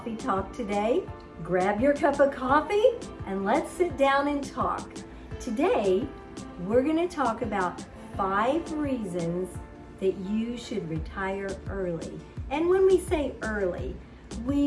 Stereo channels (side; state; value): both; identical; correlation 1.00